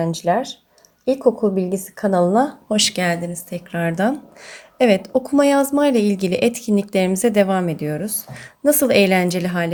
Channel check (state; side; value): identical; both; correlation 1.00